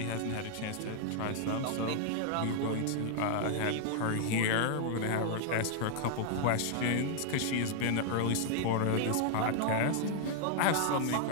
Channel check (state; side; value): different; both; correlation -0.01